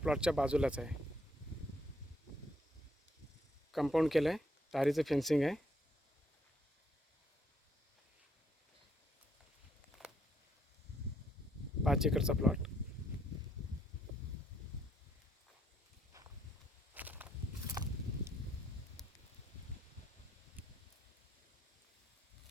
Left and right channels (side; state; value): both; normal; correlation 0.72